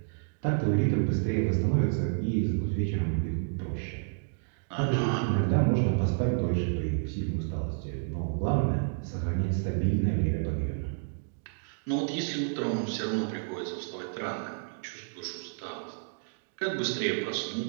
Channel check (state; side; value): silent; left; digital silence